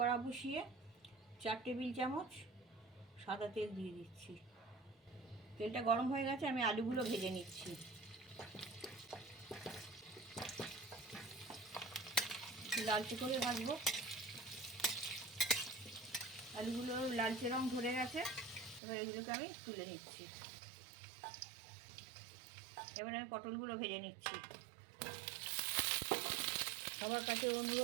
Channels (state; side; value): drops out; left; at 18.8 s